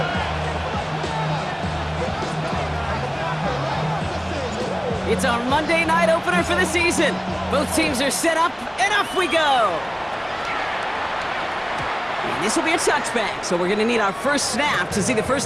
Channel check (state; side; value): identical; both; correlation 1.00